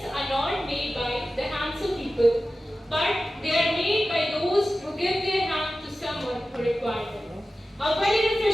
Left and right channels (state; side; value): normal; both; correlation 0.95